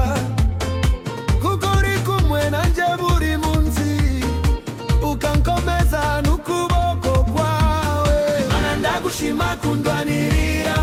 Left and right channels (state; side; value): identical; both; correlation 1.00